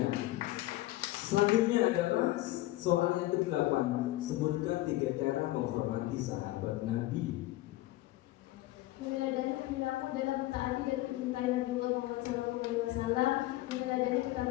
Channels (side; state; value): right; quieter; 17.3 dB